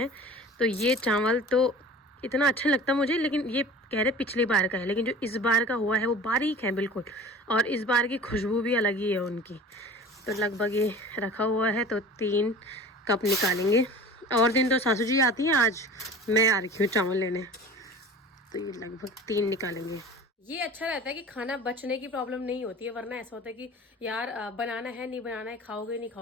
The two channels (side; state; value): both; normal; correlation 0.40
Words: तो ये चावल तो इतना अच्छा लगता मुझे, लेकिन ये कह रहे पिछली बार का है, लेकिन जो इस बार का हुआ है वो बारीक है बिल्कुल, और इस बार की खुशबू भी अलग ही है उनकी। तो लगभग ये रखा हुआ है, तो 3 कप निकालेंगे। और दिन तो सासू जी आती हैं, आज मैं आ रही हूँ चावल लेने, तो ये लगभग 3 निकालेंगे। ये अच्छा रहता है कि खाना बचने की प्रॉब्लम नहीं होती है, वरना ऐसा होता है कि यार बनाना है नहीं बनाना है, खाओगे नहीं